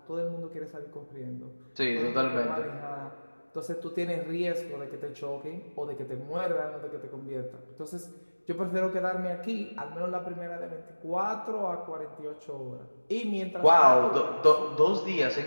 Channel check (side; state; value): both; inverted; correlation -1.00